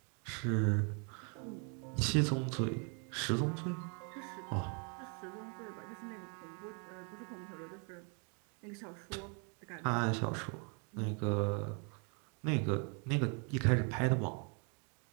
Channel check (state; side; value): quieter; left; 37.9 dB